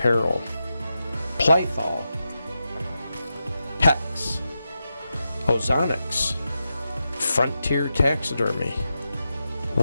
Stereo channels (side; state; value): both; inverted; correlation -0.89